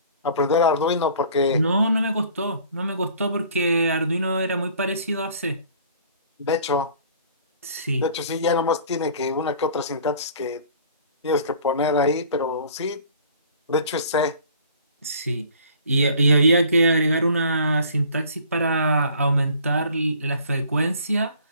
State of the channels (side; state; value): both; inverted; correlation -0.52